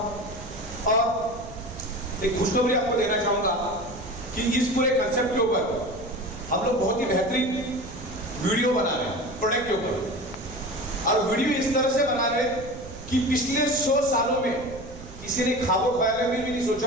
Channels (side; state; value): right; noise; rumble, 15 dB below the sound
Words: और एक खुशखबरी आपको देना चाहूंगा कि इस पूरे कंसेप्ट के ऊपर हम लोग बहुत ही बेहतरीन वीडियो बना रहे हैं प्रोडक्ट के ऊपर। और वीडियो इस तरह से बना रहे कि पिछले 100 सालों में किसी ने ख्वाबों ख्याल में भी नहीं